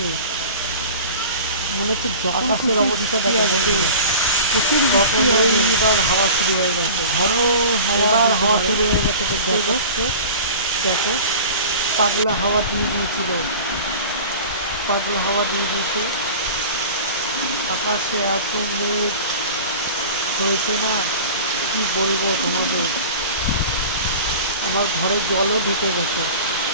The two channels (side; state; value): both; inverted; correlation -0.37